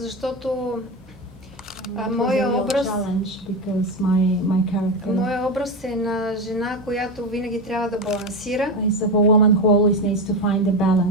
моя образ е на жена, която винаги трябва да балансира.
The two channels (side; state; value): both; normal; correlation 0.18